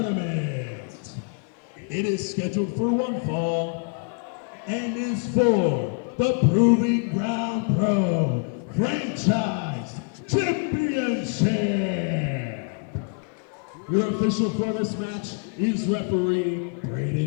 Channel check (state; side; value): quieter; right; 39.5 dB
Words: It is scheduled for one fall and is for the Proving Ground Pro Franchise Championship. Your official for this match is referee